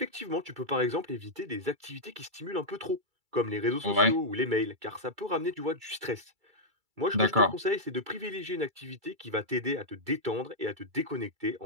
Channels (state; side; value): late; left; 2.3 ms